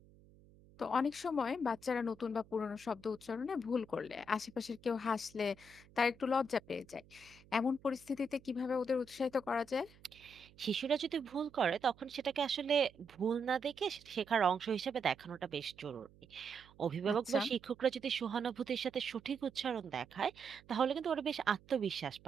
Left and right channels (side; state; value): right; noise; hum, 25 dB below the sound